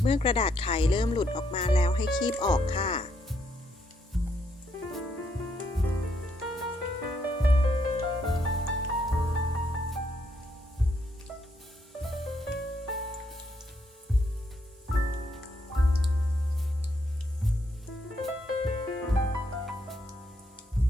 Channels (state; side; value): normal; both; correlation 0.75